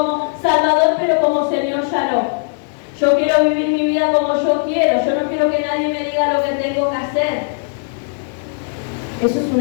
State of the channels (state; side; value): silent; right; 61 dB below the other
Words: Salvador, pero como Señor ya no. Yo quiero vivir mi vida como yo quiero. Yo no quiero que nadie me diga lo que tengo que hacer. Eso es